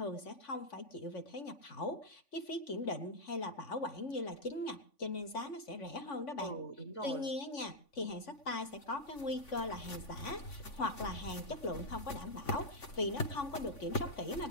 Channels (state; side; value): late; right; 3.5 ms